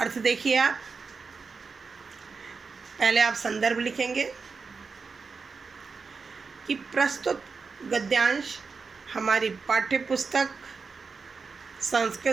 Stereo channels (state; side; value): quieter; left; 4.9 dB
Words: देखिए आप। पहले आप संदर्भ लिखेंगे कि प्रस्तुत गद्यांश हमारी पाठ्यपुस्तक